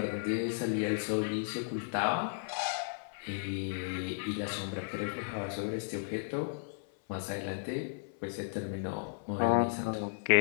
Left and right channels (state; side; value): silent; right; 55 dB below the other